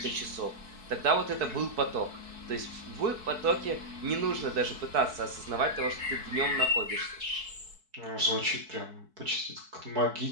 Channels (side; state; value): left; late; 4.6 ms